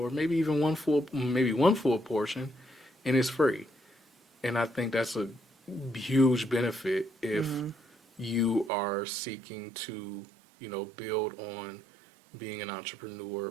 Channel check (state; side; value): drops out; left; at 8.7 s